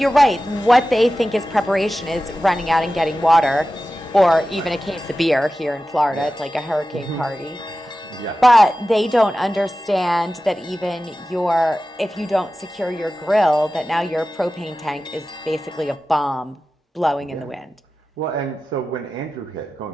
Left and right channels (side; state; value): both; normal; correlation 0.94